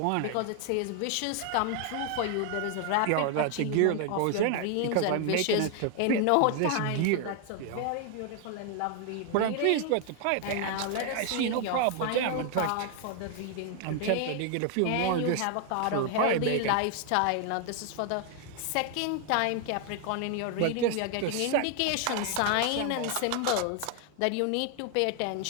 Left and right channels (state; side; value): different; both; correlation 0.00